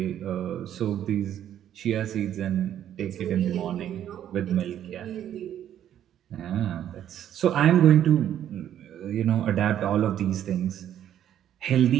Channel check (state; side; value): quieter; left; 10.7 dB